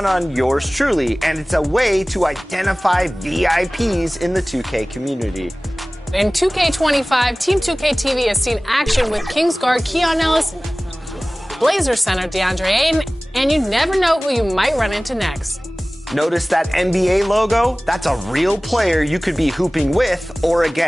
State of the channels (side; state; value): both; normal; correlation 0.98